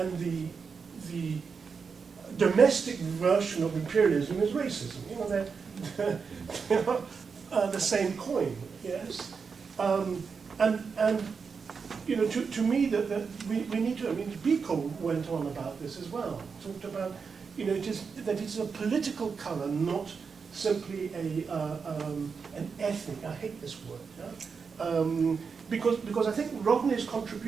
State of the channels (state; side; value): quieter; left; 5.5 dB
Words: the domestic version of imperialism is racism? They're the same coin, yes. To me, that we need to. I mean, Biko went on about this as well. Talked about, it's a political color, not simply an ethnic. I hate this word. Yeah? Because I think Rodney's